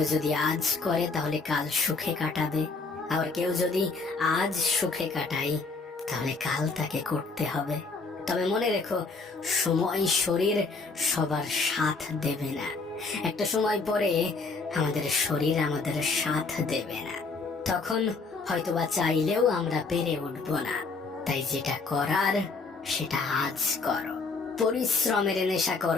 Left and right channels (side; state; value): right; quieter; 4.1 dB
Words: যদি আজ করে তাহলে কাল সুখে কাটাবে, আবার কেউ যদি আজ সুখে কাটাই তাহলে কাল তাকে করতে হবে। তবে মনে রেখো, সময়, শরীর সবার সাথ দেবে না। একটা সময় পরে আমাদের শরীর আমাদের সাথ দেবে না, তখন হয়তোবা চাইলেও আমরা পেরে উঠবো না। তাই যেটা করার সেটা আজ করো। পরিশ্রমের নেশা